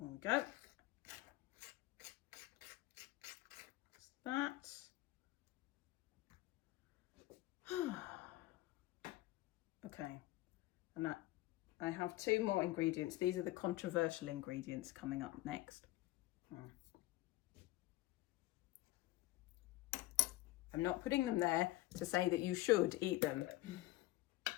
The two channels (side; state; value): right; quieter; 17.5 dB